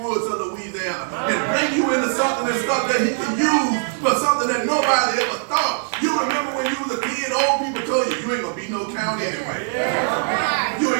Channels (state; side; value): silent; left; digital silence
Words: of Louisiana and bring you into something and stuff that he can use for something that nobody ever thought. You remember when you was a kid, old people told you, you ain't going to be no count anyway. You